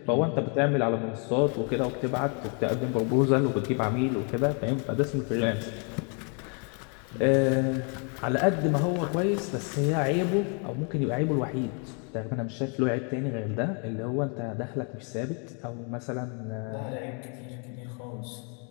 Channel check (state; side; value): quieter; right; 38.0 dB